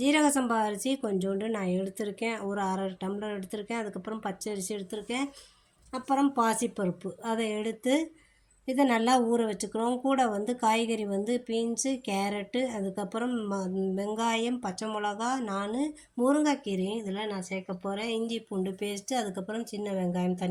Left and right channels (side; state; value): both; identical; correlation 1.00